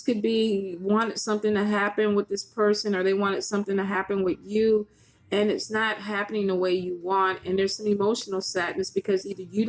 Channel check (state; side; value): identical; both; correlation 1.00